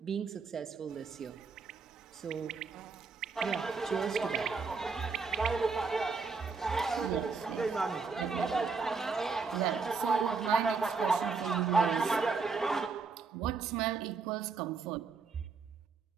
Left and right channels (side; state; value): left; quieter; 4.7 dB